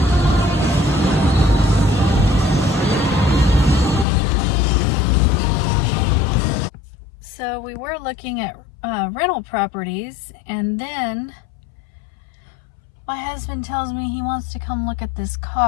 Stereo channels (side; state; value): right; drops out; at 4.0 s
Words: So we were looking at rental properties, and then my husband tells me he wants to come look at this